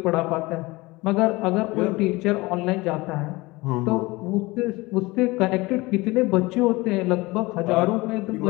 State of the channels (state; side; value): quieter; right; 22.1 dB